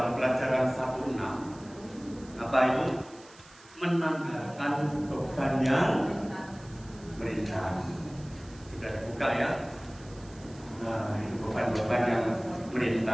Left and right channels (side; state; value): right; noise; hiss, 23 dB below the sound